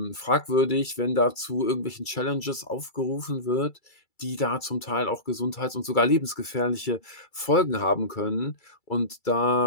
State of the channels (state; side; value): late; right; 2.3 ms